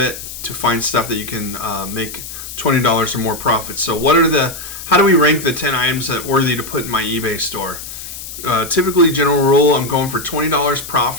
to find stuff that you can make $20 or more profit. So how do we rank the 10 items that are worthy to put in my eBay store? Typically, general rule, I'm going for $20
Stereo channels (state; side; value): noise; left; hiss, 11 dB below the sound